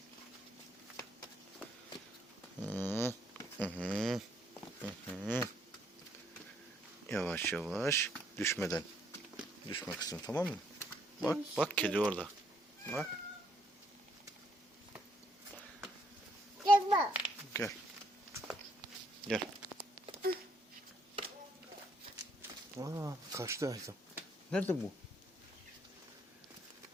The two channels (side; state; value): both; normal; correlation 0.70